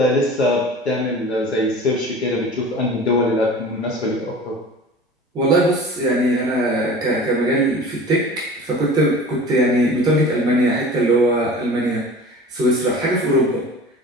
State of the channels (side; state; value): both; normal; correlation 0.39